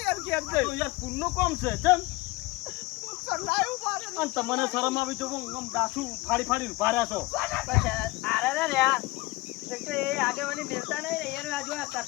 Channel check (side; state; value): right; quieter; 21.2 dB